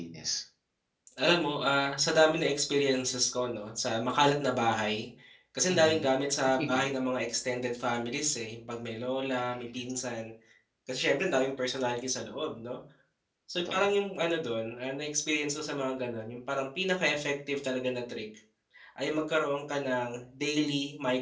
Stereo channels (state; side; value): identical; both; correlation 1.00